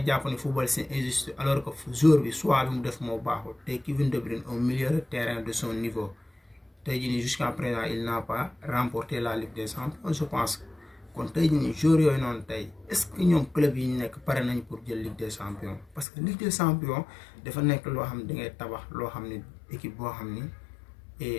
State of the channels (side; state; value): right; drops out; at 16.1 s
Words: jàpp ni football c'est injuste alors que joueur bi soit bi mu def moo baaxul tey Kevin De Bruyne au milieu de terrain de son niveau tey jii nii jusqu'à présent il n'a pas remporté la Ligue des Champions je pense kon tey jii nii joueurs yooyu noonu tey est-ce que ñoom club yi ñu nekk pare nañ pour jël Ligue des Champions parce que Ligue des Champions dafa nekk loo xam ne da ngay tabax loo xam ne équipe boo xam ni